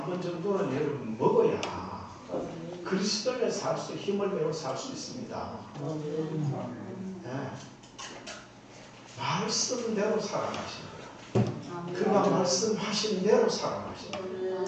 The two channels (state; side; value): identical; both; correlation 1.00